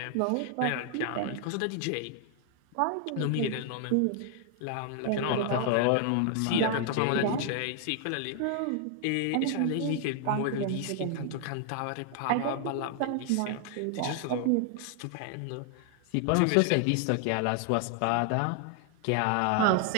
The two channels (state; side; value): different; both; correlation 0.00